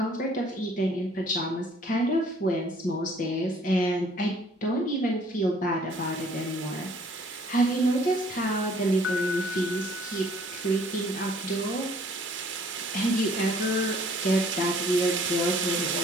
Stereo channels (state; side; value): normal; both; correlation 0.58